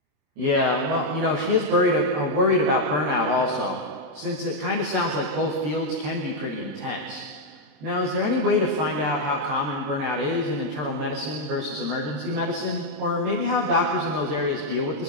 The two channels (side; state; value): left; late; 27 ms